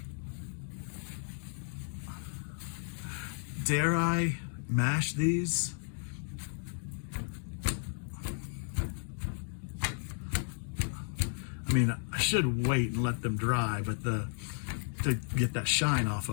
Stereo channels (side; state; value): right; silent; 55 dB below the other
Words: Dare I mash these? I mean, I should wait and let them dry, but to get that shine off